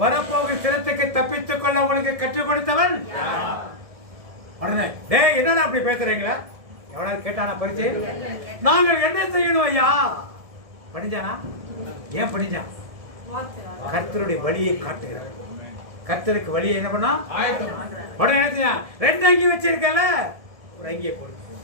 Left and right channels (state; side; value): late; left; 1.7 ms